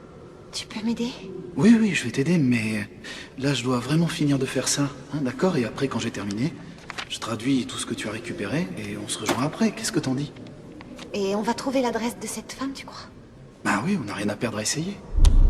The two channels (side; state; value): both; identical; correlation 1.00